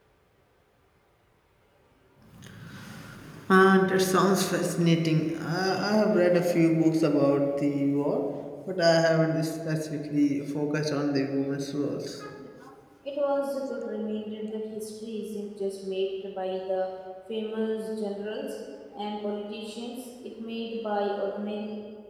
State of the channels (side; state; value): both; identical; correlation 1.00